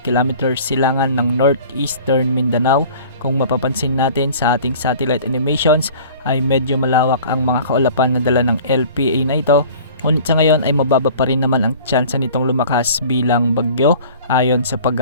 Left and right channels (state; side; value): inverted; both; correlation -0.45